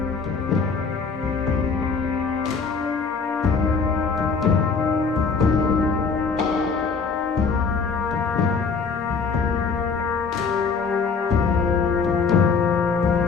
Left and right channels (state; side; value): quieter; right; 5.1 dB